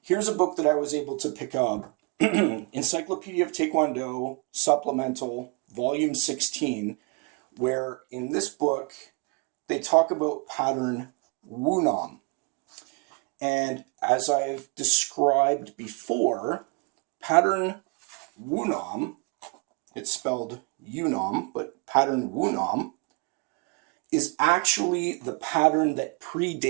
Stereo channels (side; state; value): left; quieter; 30.6 dB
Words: a book that I was able to pick up, Encyclopedia of Taekwondo, Supplemental, Volume 16, where in this book, they talk about pattern Wunam. And as I've described before, pattern Wunam, it's spelled Yunam, but pattern Wunam, is actually the pattern that